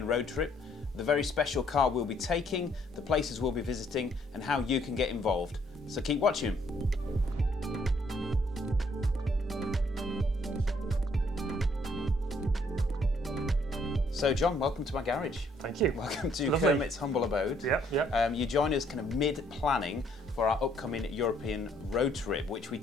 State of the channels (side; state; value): both; normal; correlation 0.67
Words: road trip, the very special car we'll be taking, the places we'll be visiting, and how you can get involved. So keep watching. So John, welcome to my garage. Thank you. Welcome to Lovely. Kermit's humble abode. Yeah. You join us kind of mid-planning for our upcoming European road trip, which we